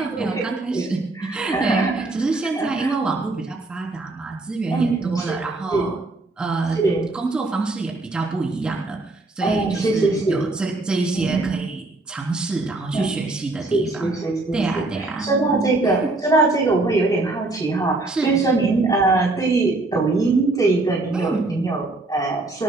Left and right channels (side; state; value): left; quieter; 3.0 dB